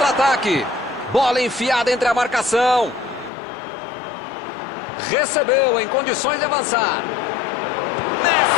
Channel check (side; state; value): right; drops out; at 3.3 s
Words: Bola enfiada entre a marcação. Recebeu em condições de avançar.